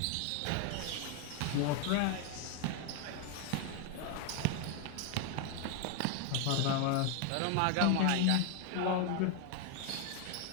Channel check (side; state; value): both; different; correlation 0.01